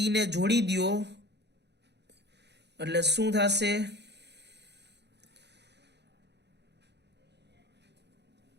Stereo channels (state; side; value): late; left; 0.50 ms